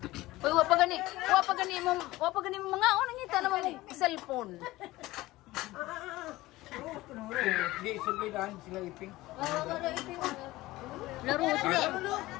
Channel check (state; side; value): quieter; right; 18.3 dB